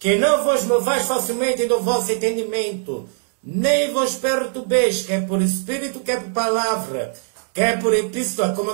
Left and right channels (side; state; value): left; silent; 65 dB below the other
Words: não vos movais facilmente do vosso entendimento, nem vos perturbeis, quer por espírito, quer por palavra, quer por epístola, como